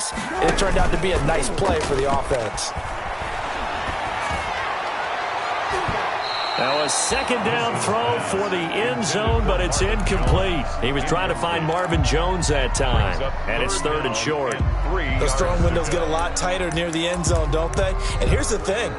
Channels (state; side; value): identical; both; correlation 1.00